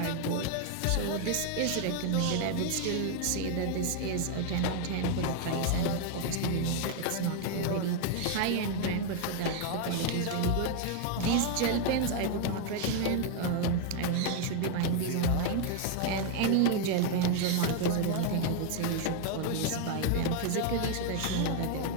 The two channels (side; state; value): both; different; correlation 0.00